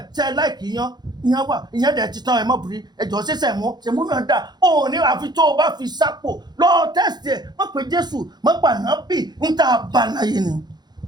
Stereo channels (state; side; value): late; left; 0.20 ms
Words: ṣe ẹ láìkì ìyẹn wà ìyẹn dẹ̀ ti tán ẹ mọ́ bìrì ẹjọ́ ṣẹ̀ṣẹ̀ mú náà dà ó ní àfi tó o bá fi sápò lọ tẹ́sítì ẹ̀ mọ́ pé Jésù mọ́ pàná bì ń tà bá láyé ni